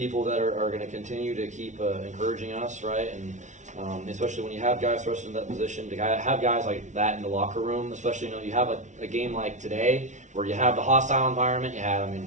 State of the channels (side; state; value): left; late; 0.35 ms